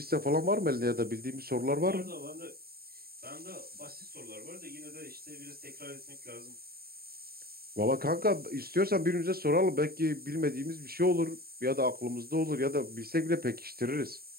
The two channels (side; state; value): left; late; 0.44 ms